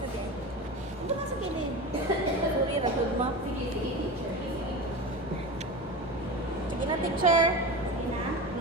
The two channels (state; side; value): normal; both; correlation 0.28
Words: sabi. Ano ba sa kilid? Sorry, ragod ma. Sige, teacher. Sige na, teacher. Sige na.